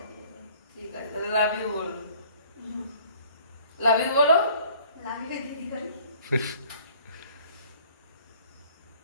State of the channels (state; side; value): inverted; both; correlation -0.54